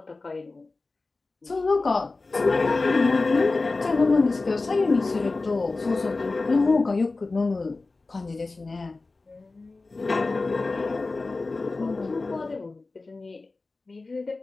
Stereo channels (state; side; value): quieter; right; 3.5 dB